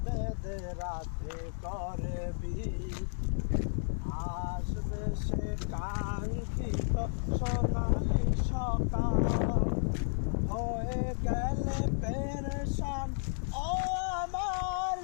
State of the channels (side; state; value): right; silent; digital silence